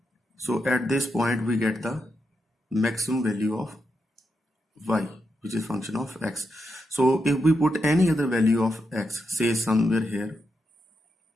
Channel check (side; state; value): both; normal; correlation 0.84